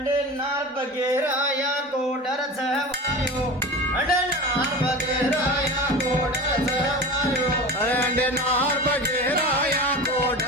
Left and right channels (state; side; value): normal; both; correlation 0.31